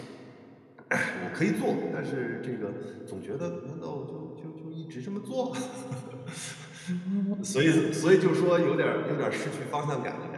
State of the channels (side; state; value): both; identical; correlation 1.00